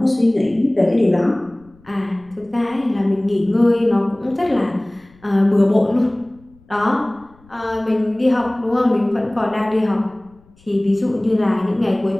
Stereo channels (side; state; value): left; noise; rumble, 29 dB below the sound